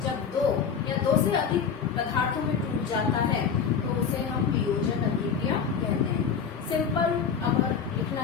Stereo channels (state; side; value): quieter; right; 6.6 dB